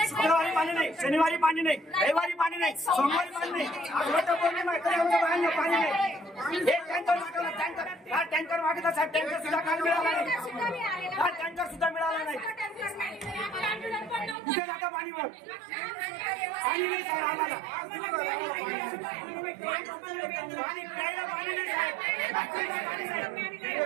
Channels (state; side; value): drops out; left; at 14.4 s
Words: शुक्रवारी पाणी नाही, शनिवारी पाणी नाही, रविवारी पाणी नाही, सोमवारी पाणी नाही, आठवड्यात पौर्णिमा आहे तरी आमच्या बाहेर पाणी नाही। एक टँकर मागवला, टँकर मागितला साहेब, टँकर सुद्धा काल मिळाला नाही, टँकर सुद्धा मिळाला नाही। कुठे जातं पाणी? मग पाणी नाही साहेब आम्हाला, पाणी प्यायला पाणी नाही साहेब,